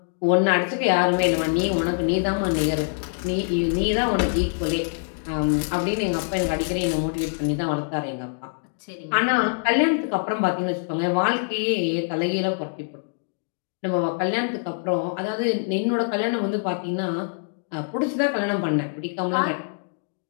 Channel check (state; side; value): silent; right; digital silence